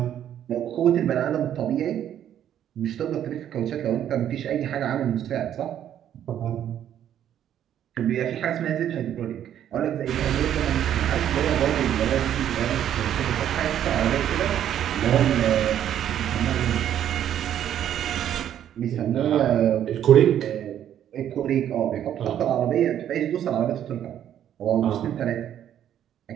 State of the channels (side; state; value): left; quieter; 10.4 dB